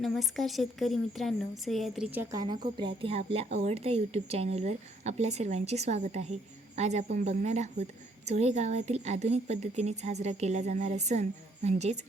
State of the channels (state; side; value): normal; both; correlation 0.67